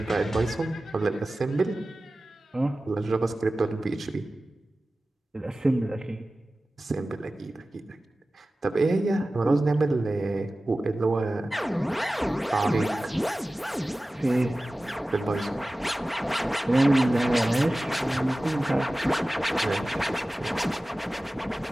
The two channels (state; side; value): normal; both; correlation 0.96